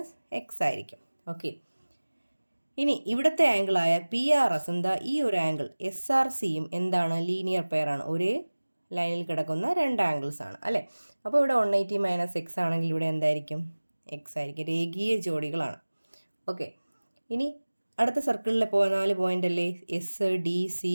എക്സ് ആയിരിക്കും. ഓക്കെ, ഇനി ഇവിടുത്തെ ആംഗിളായ PRS എന്താ ഈ ഒരു ആംഗിൾ SRCയും എന്താണ് ലീനിയർ പെയറാണ്, ഒരേ ലൈനിൽ കിടക്കുന്ന രണ്ട് ആംഗിൾസ് ആണ് അല്ലേ. അപ്പോൾ ഇവിടെ 180 മൈനസ് എക്സ് ആണെങ്കിൽ ഇവിടെ എന്തായിരിക്കും, എക്സ് ആയിരിക്കും, രേഖീയ ജോഡികളാണ്. ഓക്കെ, ഇനി അടുത്ത സർക്കിളിലെ 4 പോയിന്റ് അല്ലേ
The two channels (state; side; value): inverted; both; correlation -1.00